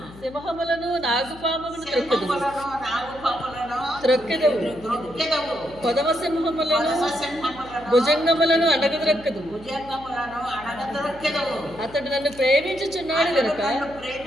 సింహములను నాగుపాములను త్రొక్కెదవు, కొదమ సింహములను భుజంగములను అడగద్రొక్కదు. అతడు నన్ను ప్రేమించుచున్నాడు గనుక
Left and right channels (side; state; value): left; noise; hum, 19 dB below the sound